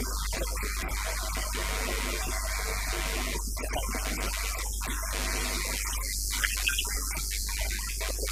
hacerles un segundo videoclip. Y gracias a Vicky pues también estoy aquí. Es la segunda vez que me trae y es una gran oportunidad para que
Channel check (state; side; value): identical; both; correlation 1.00